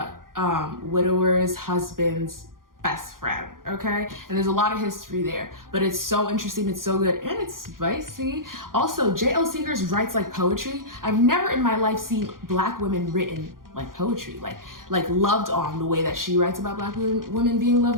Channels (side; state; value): left; late; 0.91 ms